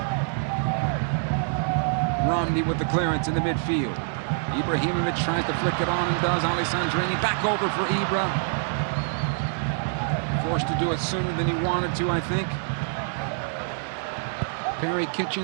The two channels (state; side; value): silent; left; digital silence